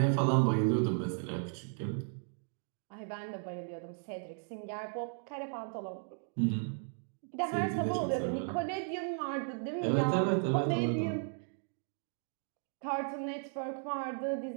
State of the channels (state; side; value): silent; left; 54 dB below the other